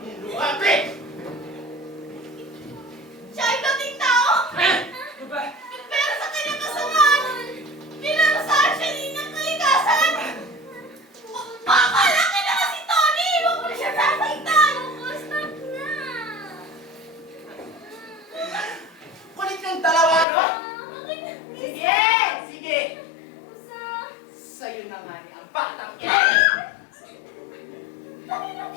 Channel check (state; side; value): drops out; right; at 20.2 s